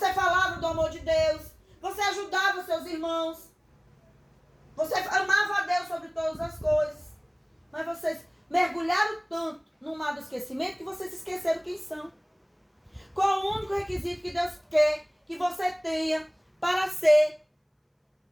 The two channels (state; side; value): identical; both; correlation 1.00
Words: falava do amor de Deus, você ajudava os seus irmãos, você amava a Deus sobre todas as coisas. Mas vocês mergulharam tanto no mar do esquecimento que vocês esqueceram quem são. Qual o único requisito que Deus quer que você tenha para ser